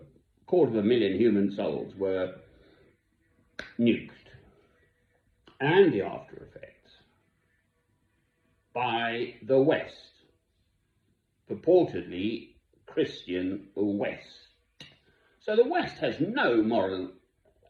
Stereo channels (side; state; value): both; identical; correlation 1.00